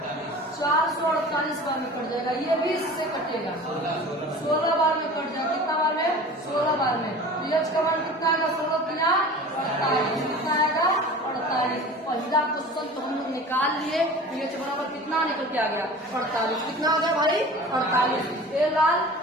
448 बार में कट जाएगा। ये 20 से कटेगा, 16 बार में कट जाएगा। कितना बार में? 16 बार में। तो यच का मान कितना आएगा? 16 गुना 48, कितना आएगा? 48। पहला क्वेश्चन तो हम लोग निकाल लिए। यच बराबर कितना निकल के आ गया? 48। कितना हो गया भाई? 48। ए लाल,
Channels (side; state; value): both; normal; correlation 0.39